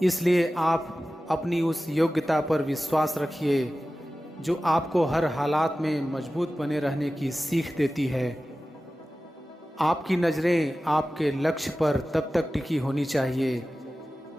इसलिए आप अपनी उस योग्यता पर विश्वास रखिए जो आपको हर हालात में मजबूत बने रहने की सीख देती है। आपकी नज़रें आपके लक्ष्य पर तब तक टिकी होनी चाहिए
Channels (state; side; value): normal; both; correlation 0.95